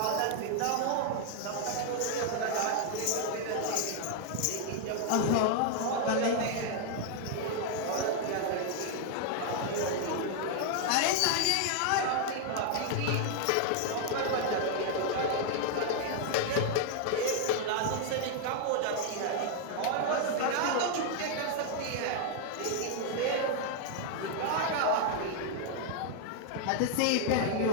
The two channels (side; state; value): both; different; correlation 0.00